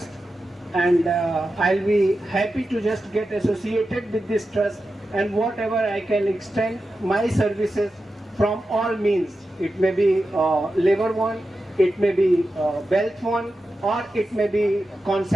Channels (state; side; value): normal; both; correlation 0.91